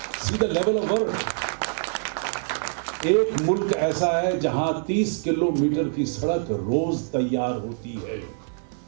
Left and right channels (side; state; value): left; silent; 60 dB below the other